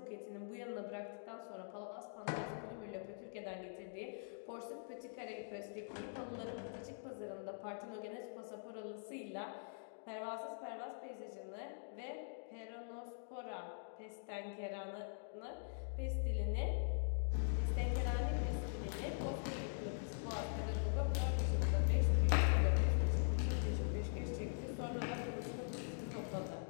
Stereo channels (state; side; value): silent; right; digital silence